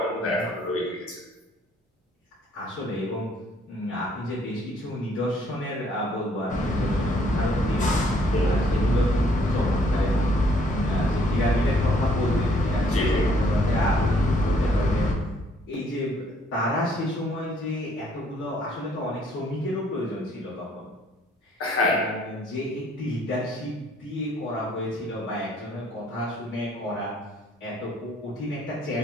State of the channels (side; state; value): both; normal; correlation 0.64